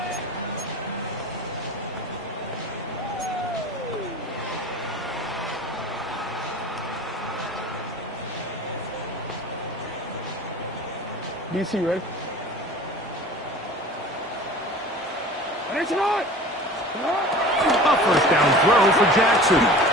DC, ready? A first down throw for Jackson.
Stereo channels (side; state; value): both; normal; correlation 0.39